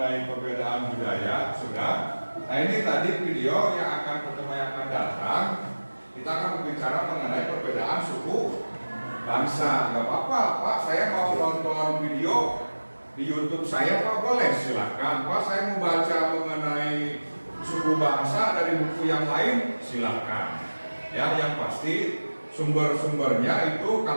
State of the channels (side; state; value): both; inverted; correlation -1.00